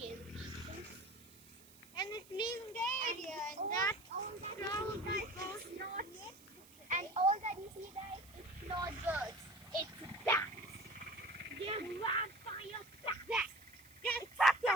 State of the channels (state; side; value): noise; right; hiss, 23 dB below the sound